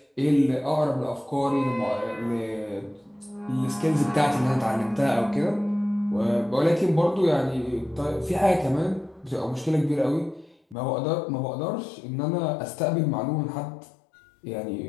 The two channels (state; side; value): drops out; right; at 10.8 s